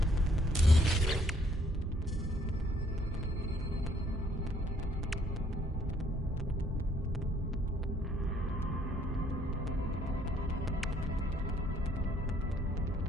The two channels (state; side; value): normal; both; correlation 0.65